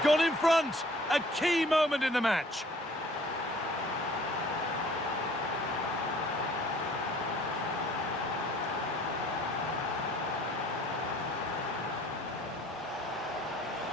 gone in front. A key moment in the match.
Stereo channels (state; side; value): normal; both; correlation 0.54